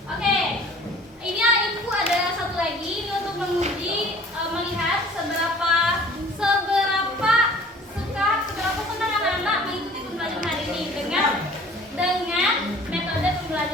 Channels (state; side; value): normal; both; correlation 0.49